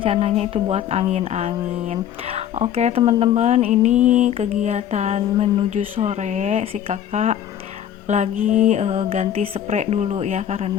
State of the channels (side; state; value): right; quieter; 10.2 dB